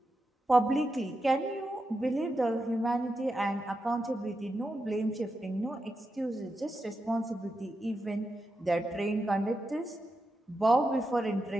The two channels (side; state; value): both; normal; correlation 0.88